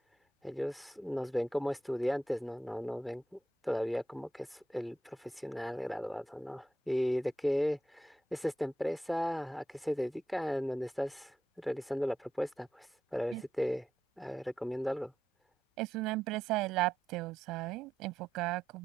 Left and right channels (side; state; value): both; normal; correlation 0.84